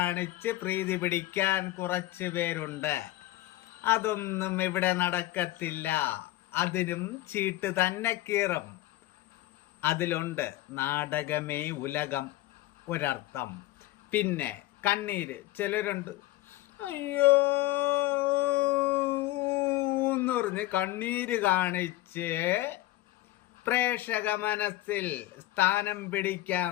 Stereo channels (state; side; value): quieter; right; 16.8 dB